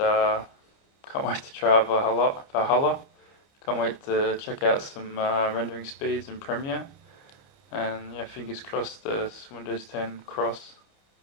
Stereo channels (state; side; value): late; right; 29 ms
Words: wait to try Valhalla. Can't wait to check out some rendering speeds in Premiere. And yeah, fingers crossed this Windows 10 cross